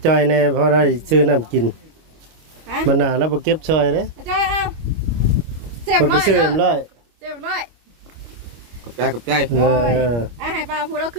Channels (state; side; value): late; left; 25 ms